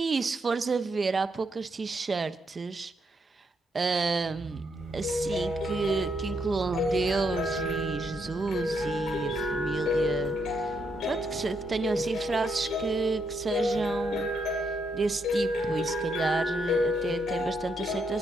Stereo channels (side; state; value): both; normal; correlation 0.77